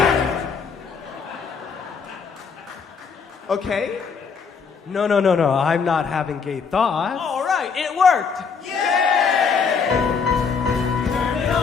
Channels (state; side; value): quieter; right; 5.8 dB